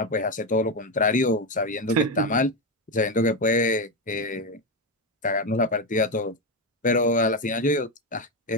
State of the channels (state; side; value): normal; both; correlation 0.10